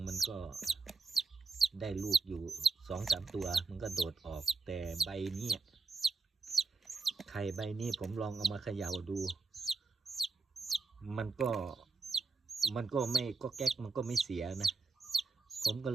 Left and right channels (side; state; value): left; quieter; 4.2 dB